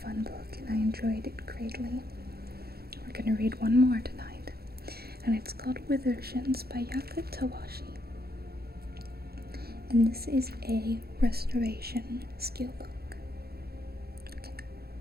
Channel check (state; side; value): late; left; 0.46 ms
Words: fun book, and I enjoyed it greatly. We're going to read one more tonight, and it's called Withershins by Yaka Tawashi. And this is a restoration skill book. Okay.